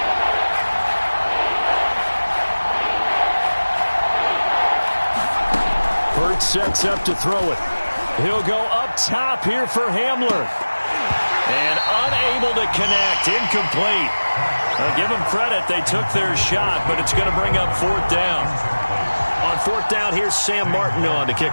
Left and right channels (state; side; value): inverted; both; correlation -1.00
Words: Hurts sets up to throw it. He'll go up top here for Hamler. And unable to connect. Incomplete. Now, give them credit. They took their shot, but it's going to bring up 4th down. On 4th down, here's Sam Martin on to